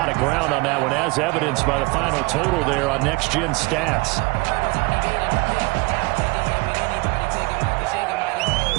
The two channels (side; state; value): left; quieter; 25.0 dB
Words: of ground on that one, as evidenced by the final total there on Next Gen Stats.